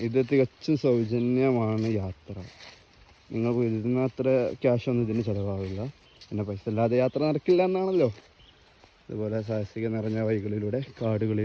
ഇത് തികച്ചും സൗജന്യമാണ് യാത്ര. നിങ്ങൾക്ക് ഇതിന് അത്ര ക്യാഷൊന്നും ഇതിന് ചിലവാകില്ല. പിന്നെ പൈസ ഇല്ലാതെ യാത്ര നടക്കില്ല എന്നാണല്ലോ. അതുപോലെ സാഹസിക നിറഞ്ഞ വഴികളിലൂടെ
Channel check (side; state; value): both; identical; correlation 1.00